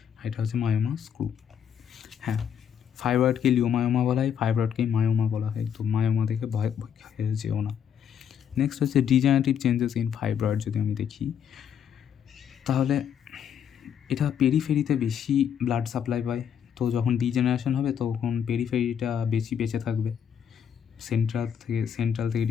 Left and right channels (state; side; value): quieter; right; 8.4 dB